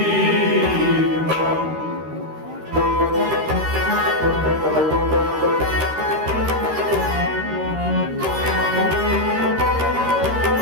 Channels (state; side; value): late; left; 13 ms